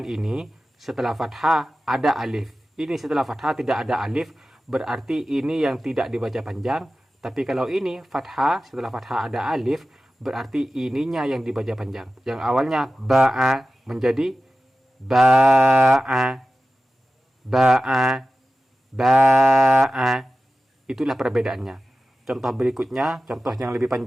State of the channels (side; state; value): both; normal; correlation 0.94